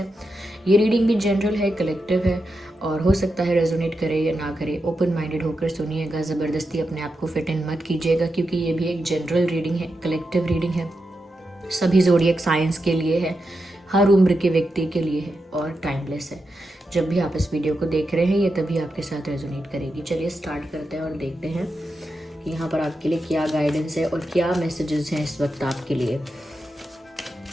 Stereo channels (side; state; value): both; normal; correlation 0.87